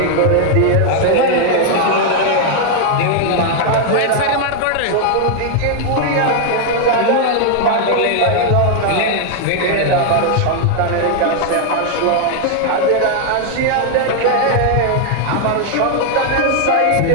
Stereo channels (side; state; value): both; different; correlation 0.00